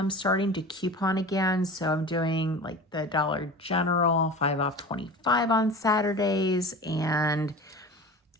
starting to coupon again. So I'm doing like the Dollar General 5 off 25 on Saturdays. And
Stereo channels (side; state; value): both; normal; correlation 0.34